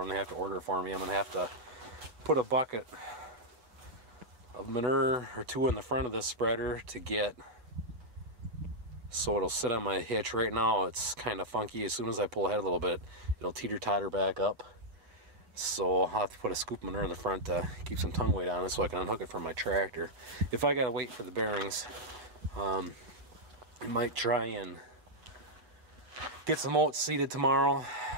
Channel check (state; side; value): late; left; 8.6 ms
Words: and they have to order it for me, I'm going to have to put a bucket of manure or 2 in the front of this spreader to get, so it'll sit on my hitch. Right now it's kind of funky. As soon as I pull ahead a little bit, it'll teeter-totter back up. So I'll have to put a scoop of manure in the front to keep some tongue weight on it so I can unhook it from my tractor. If I gotta wait for the bearings, I might try and get some oats seeded tomorrow.